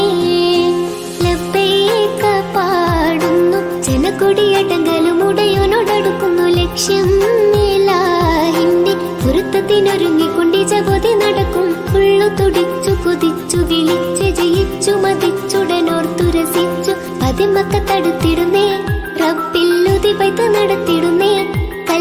ലബ്ബൈക പാടുന്നു ജനക്കൊടിയടങ്ങലും ഉടയോനോടടുക്കുന്നു ലക്ഷ്യം മേലാഹിന്റെ പൊരുത്തത്തിനൊരുങ്ങിക്കൊണ്ട് ജഗതി നടക്കും ഉള്ളു തുടിച്ചു കൊതിച്ചു വിളിച്ച് ജയിച്ചു മതിച്ചുടനോർത്തു രസിച്ചു പതിമക്കത്തടുത്തിടുന്നേ റബ്ബില്ലുതി ബൈത്ത് നടത്തിടുന്നേ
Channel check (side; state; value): both; identical; correlation 1.00